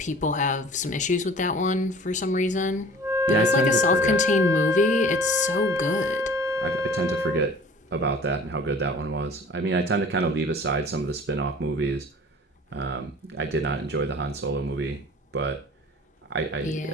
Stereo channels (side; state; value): both; normal; correlation 0.45